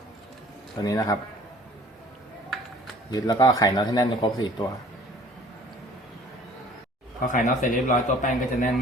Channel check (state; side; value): normal; both; correlation 0.51